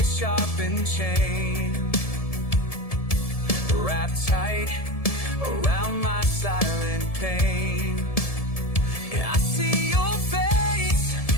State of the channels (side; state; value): right; late; 1.7 ms